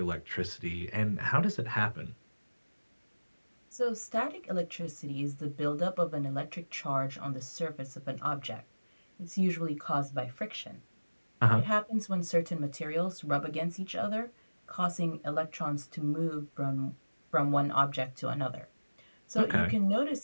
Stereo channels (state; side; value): inverted; both; correlation -1.00